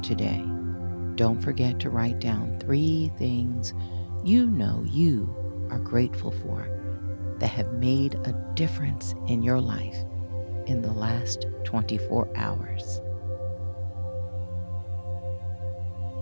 today, don't forget to write down 3 things you know you are grateful for that have made a difference in your life in the last 24 hours.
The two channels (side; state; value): both; inverted; correlation -1.00